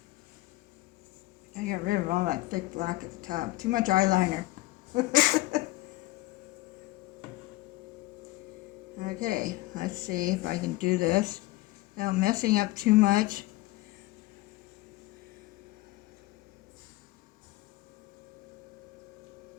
I get rid of all that thick black at the top. Too much eyeliner. Okay, let's see if I can do this without messing up too much.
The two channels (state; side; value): quieter; right; 19.1 dB